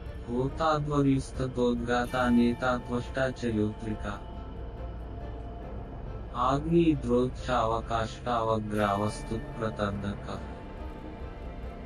होताद्वर्युस्ततोद्गाता नेता त्वष्टा च योत्रिका आग्निद्रोक्षावकाष्टावग्रावस्तुत्प्रतर्दकः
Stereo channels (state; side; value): identical; both; correlation 1.00